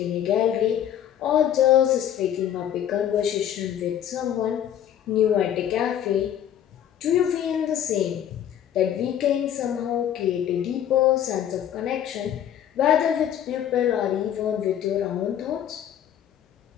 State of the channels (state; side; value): quieter; right; 10.2 dB